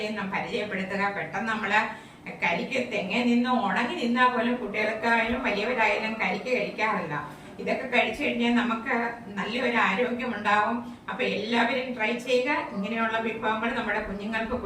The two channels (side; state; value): both; identical; correlation 1.00